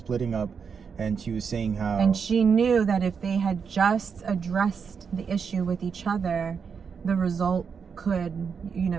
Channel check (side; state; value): left; quieter; 6.2 dB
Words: up, and she was saying how... And she knew that if they had just addressed the issue with each other, the result could, you